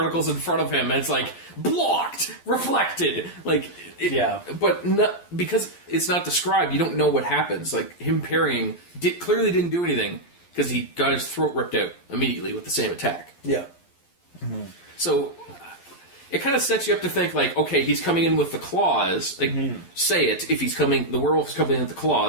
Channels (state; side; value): late; right; 11 ms